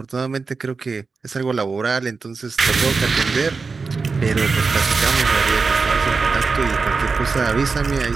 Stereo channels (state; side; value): quieter; left; 4.5 dB